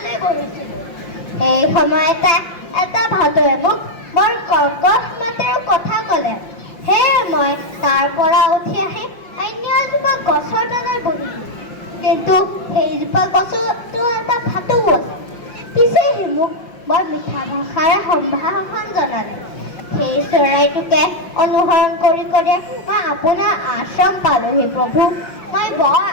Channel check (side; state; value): right; late; 5.6 ms